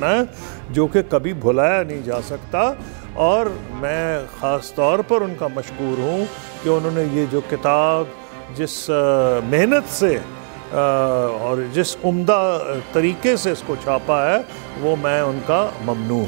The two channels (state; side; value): silent; left; digital silence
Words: है, जो कि कभी भुलाया नहीं जा सकता। और मैं ख़ास तौर पर उनका मशकूर हूँ कि उन्होंने ये जो किताब जिस मेहनत से और जिस उम्दा तरीके से इसको छापा है, वो मैं उनका ममनू